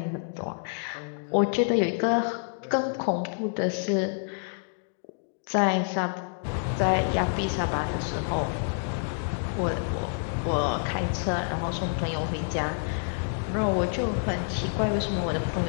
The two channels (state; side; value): silent; right; digital silence